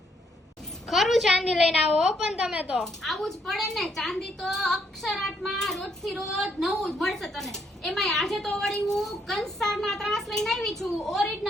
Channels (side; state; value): both; normal; correlation 0.72